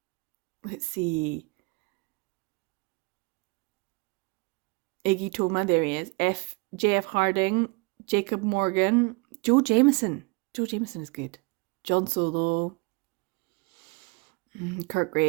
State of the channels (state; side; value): quieter; left; 29.2 dB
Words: let's see. Iggy Toma, there he is. J.F. Harding, Jacob Morgan, Joe Jameson. Joe Jameson is good. John Solo, Kurt